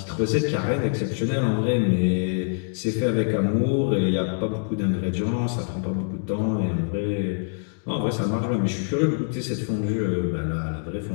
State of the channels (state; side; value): silent; right; digital silence